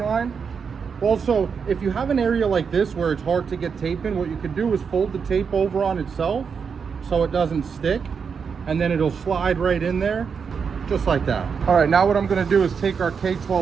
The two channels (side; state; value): left; quieter; 6.2 dB